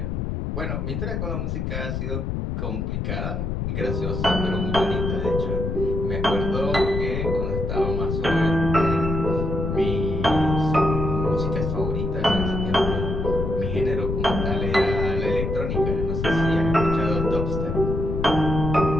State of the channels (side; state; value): left; noise; rumble, 2 dB below the sound